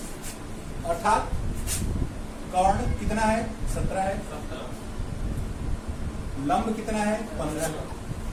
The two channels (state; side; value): identical; both; correlation 1.00